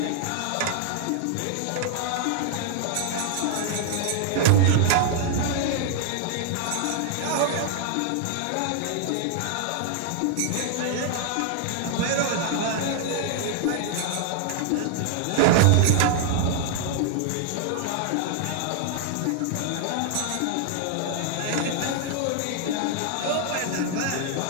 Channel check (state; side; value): different; both; correlation 0.00